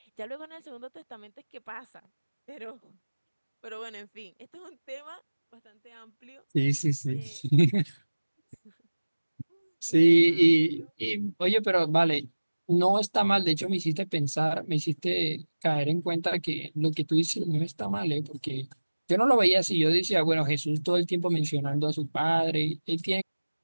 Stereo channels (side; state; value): both; inverted; correlation -1.00